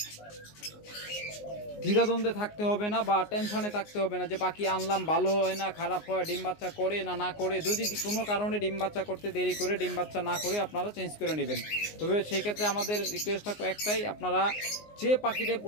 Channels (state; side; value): late; right; 19 ms